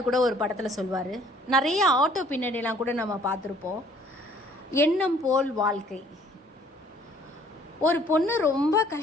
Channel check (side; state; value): both; normal; correlation 0.58